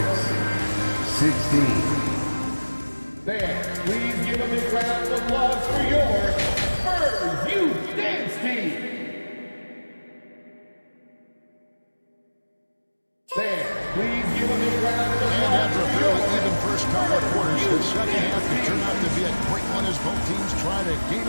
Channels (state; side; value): inverted; both; correlation -1.00